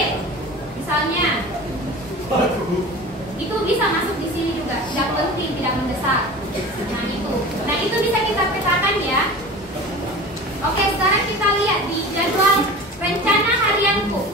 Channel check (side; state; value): both; normal; correlation 0.36